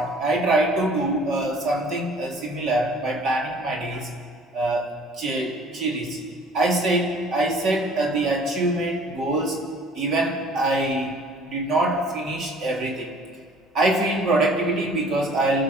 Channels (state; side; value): normal; both; correlation 0.52